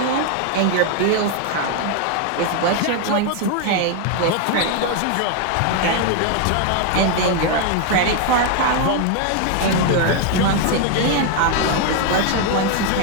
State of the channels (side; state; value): both; different; correlation 0.01